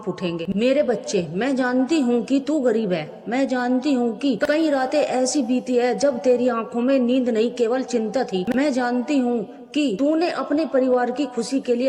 उठेंगे। मेरे बच्चे, मैं जानती हूँ कि तू गरीब है। मैं जानती हूँ कि कई रातें ऐसी बीती है जब तेरी आंखों में नींद नहीं केवल चिंता थी। मैं जानती हूँ कि तूने अपने परिवार की खुशी के लिए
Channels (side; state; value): both; identical; correlation 1.00